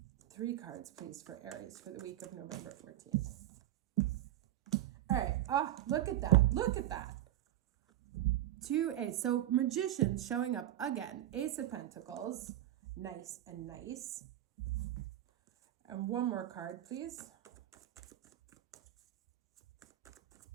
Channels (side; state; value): left; quieter; 13.7 dB